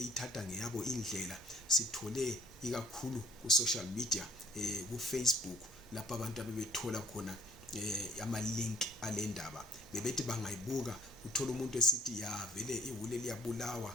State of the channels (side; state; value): both; normal; correlation 0.58